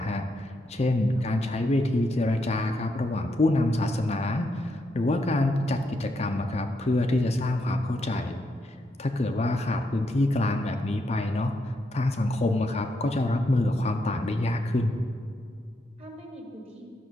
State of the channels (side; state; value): both; normal; correlation 0.80